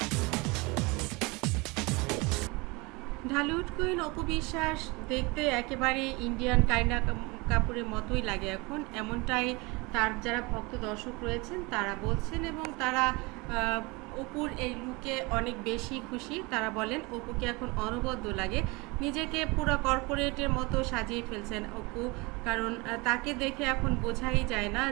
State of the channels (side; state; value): left; quieter; 26.0 dB